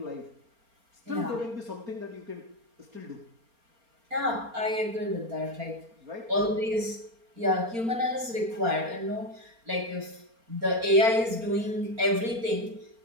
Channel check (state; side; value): late; left; 4.3 ms